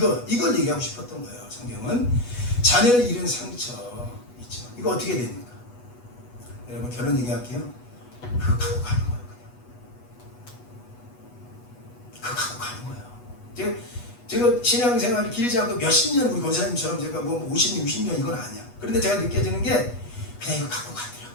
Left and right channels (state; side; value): late; right; 8.2 ms